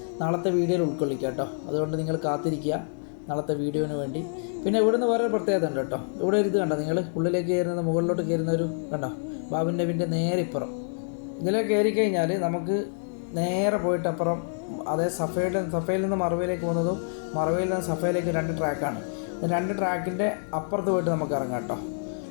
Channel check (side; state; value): right; silent; digital silence